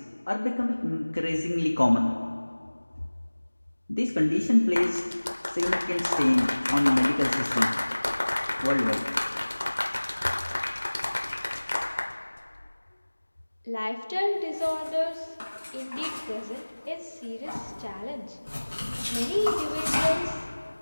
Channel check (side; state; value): both; inverted; correlation -1.00